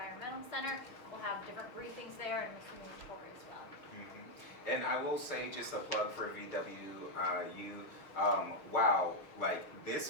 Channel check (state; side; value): late; right; 6.4 ms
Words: Center. We'll have different briefings there and some tour as well. And I will say, just a plug for VWU, wow, like this